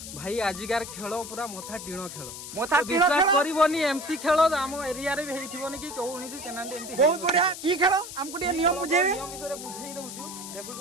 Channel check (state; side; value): noise; left; hiss, 10 dB below the sound